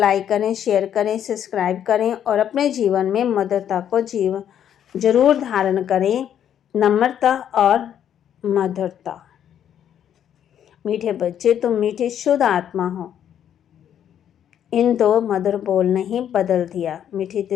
करें, शेयर करें, सब्सक्राइब करें और अपने जीवन में मधुरता को जरूर धारण करें। नम्रता और मधुरता। मीठे बच्चे, तुम मीठी शुद्ध आत्मा हो। इन 2 मधुर बोल ने ही बदल दिया। मीठी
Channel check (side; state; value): right; quieter; 9.7 dB